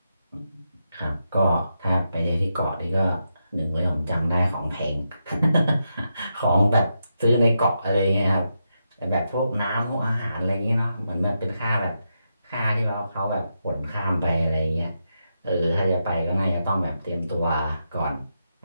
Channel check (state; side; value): inverted; both; correlation -0.85